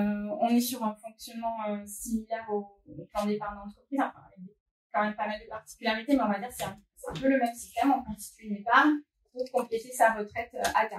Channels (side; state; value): both; identical; correlation 1.00